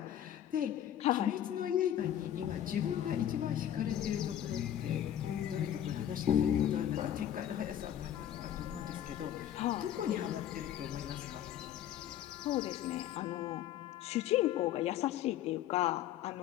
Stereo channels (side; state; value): right; quieter; 11.0 dB